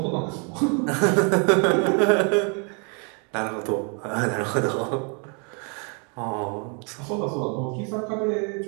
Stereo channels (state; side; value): quieter; left; 37.0 dB